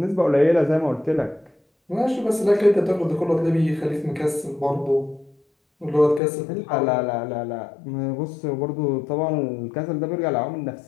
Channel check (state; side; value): drops out; right; at 6.2 s